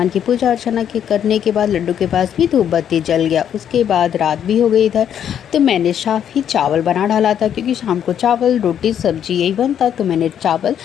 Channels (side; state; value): right; quieter; 9.3 dB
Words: की पूजा अर्चना के करने के बाद लड्डू के पास भी धूप बत्ती जल गया। उसके बाद रात भी हो गई इधर, तो मैंने साफ ही चावल बना डाला था, क्योंकि शाम को चावल रोटी सब्जी यही बनता, तो मैंने चावल